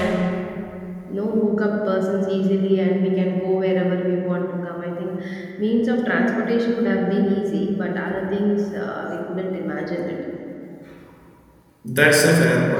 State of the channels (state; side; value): identical; both; correlation 1.00